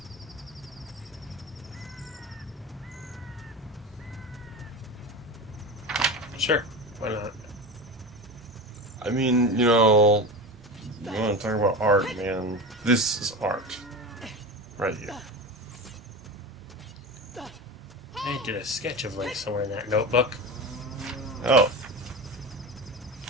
Sure, why not? I mean, you know, you want to talk about art, man. This is art. Right here. I did a sketch of Link somewhere in that notebook. Oh.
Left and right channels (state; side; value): normal; both; correlation 0.26